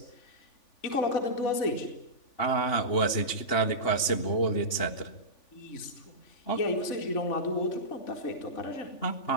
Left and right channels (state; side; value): late; right; 3.5 ms